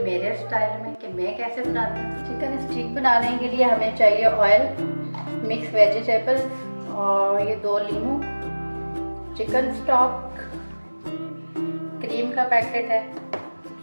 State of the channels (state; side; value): inverted; both; correlation -1.00